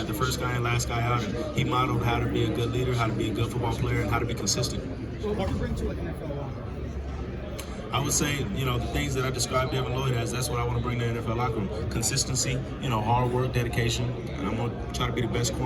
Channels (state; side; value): identical; both; correlation 1.00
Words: first guy and last guy out. And he modeled how to be a good leader, how to be a good football player, and how to be consistent. So what do you bring to an NFL locker? I would say, the things that I described Devin Lloyd as, that's what I want to bring to the NFL locker room. Consistency, hard work, dedication, and I'm going to try to be the best